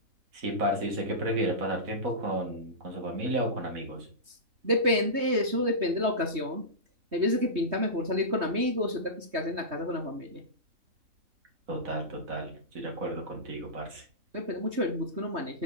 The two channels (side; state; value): left; late; 3.2 ms